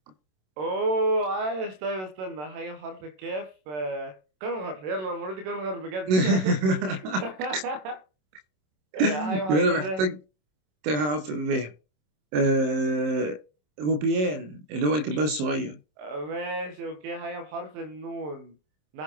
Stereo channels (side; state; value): left; late; 27 ms